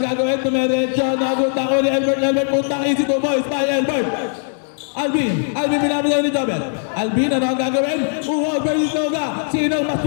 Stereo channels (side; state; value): right; silent; 66 dB below the other